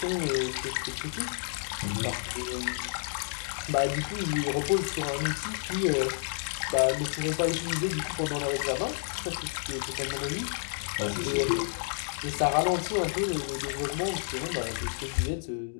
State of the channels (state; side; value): silent; right; digital silence